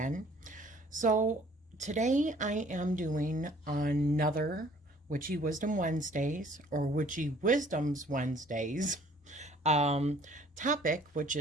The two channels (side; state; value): both; normal; correlation 0.56